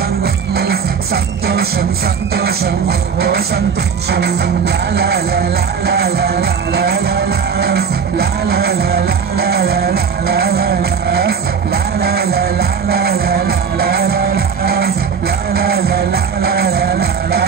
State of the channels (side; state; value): left; quieter; 6.5 dB